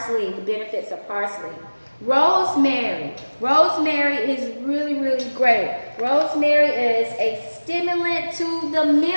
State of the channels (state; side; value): inverted; both; correlation -1.00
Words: the benefits of parsley. Rosemary. Rosemary is really, really great. Rosemary is a stimulant to the